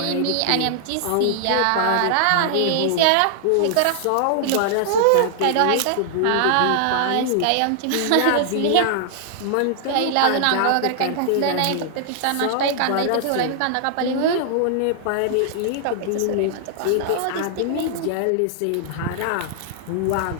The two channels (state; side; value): different; both; correlation -0.01